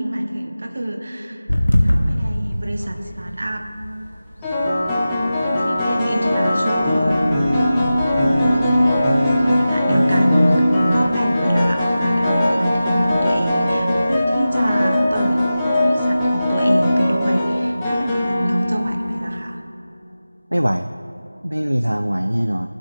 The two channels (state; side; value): inverted; both; correlation -0.94